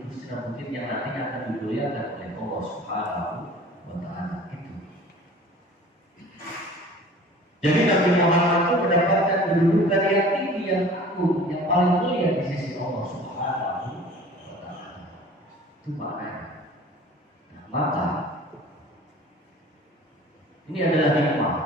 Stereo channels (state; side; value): normal; both; correlation 0.45